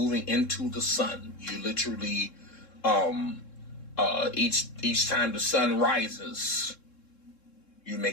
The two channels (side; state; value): right; late; 3.7 ms